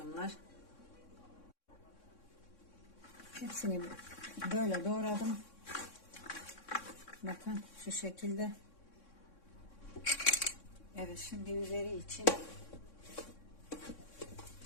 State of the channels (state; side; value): late; right; 3.6 ms